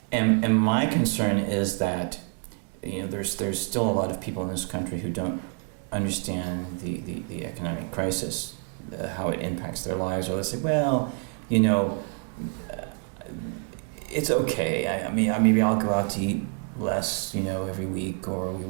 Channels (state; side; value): quieter; left; 38.0 dB